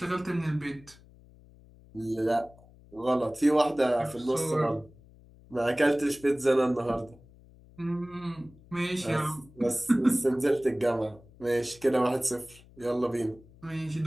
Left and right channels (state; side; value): noise; left; hum, 24 dB below the sound